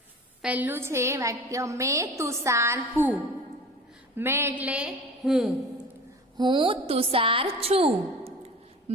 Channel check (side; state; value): both; normal; correlation 0.38